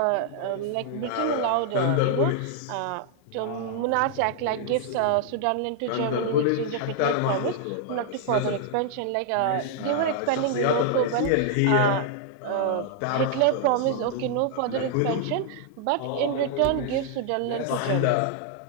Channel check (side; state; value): both; different; correlation -0.01